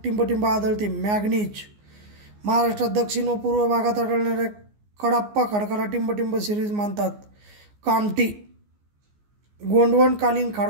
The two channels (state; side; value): late; left; 14 ms